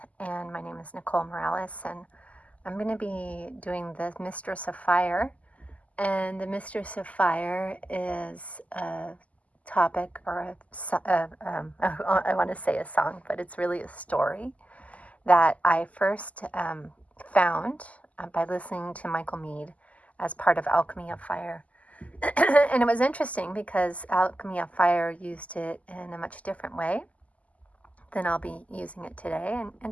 and my name is Nicole Morales, and I'm going to be doing the Mistress of Fire. And the Mistress of Fire is a topic or I want to say a song, but it's really a story that I first found by listening to Michael Meade as part of Alchemy of Fire. And it was interesting because Alchemy of Fire used it in a much different way than I'll be using it today,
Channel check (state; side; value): late; right; 0.071 ms